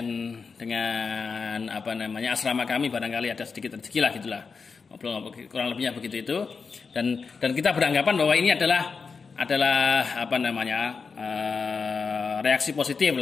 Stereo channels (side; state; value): right; quieter; 5.1 dB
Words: apa namanya asrama kami, barangkali ada sedikit rezeki lah gitulah, kurang lebihnya begitu itu. Dan kita beranggapan bahwa ini adalah apa namanya reaksi positif